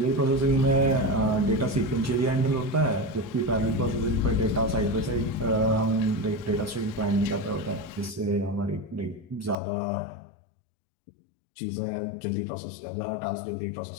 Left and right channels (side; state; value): right; drops out; at 9.6 s